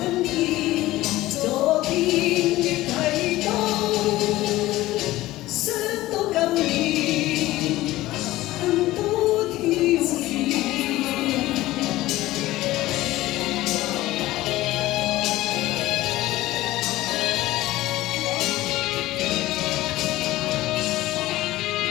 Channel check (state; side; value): quieter; right; 17.0 dB